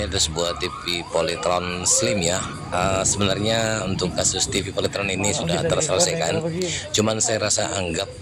ada sebuah TV Polytron Slim ya. Sebenarnya untuk kasus TV Polytron ini sudah terselesaikan. Cuman saya rasa anggap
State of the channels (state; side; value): identical; both; correlation 1.00